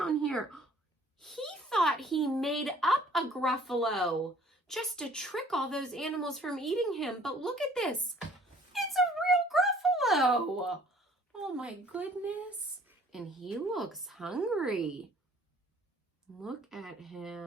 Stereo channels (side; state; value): both; normal; correlation 0.56